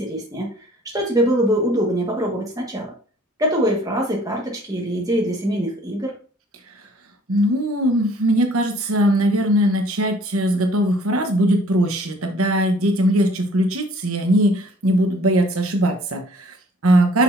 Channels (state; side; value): normal; both; correlation 0.56